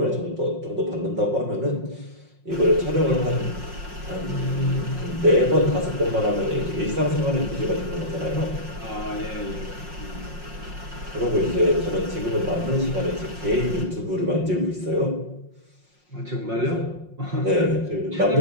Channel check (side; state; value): left; late; 5.5 ms